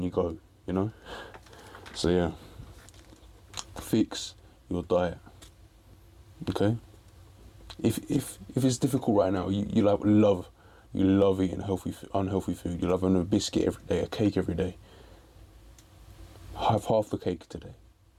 you go, you know. So yeah, fix your diet. Okay. If it's difficult right now, you love eating unhealthy food. You love having a biscuit every day, a cake every day. Have half the cake today.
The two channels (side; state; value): both; identical; correlation 1.00